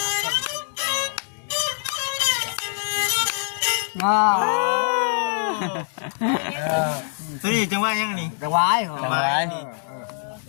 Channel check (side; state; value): right; silent; digital silence